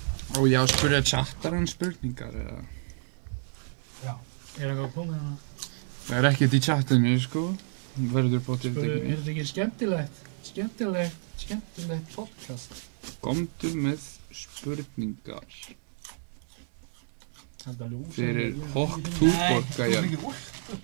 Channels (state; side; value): silent; left; digital silence